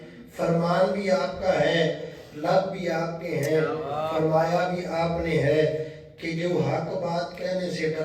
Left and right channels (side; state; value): both; identical; correlation 1.00